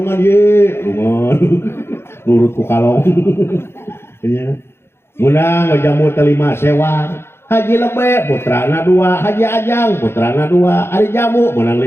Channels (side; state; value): right; late; 0.12 ms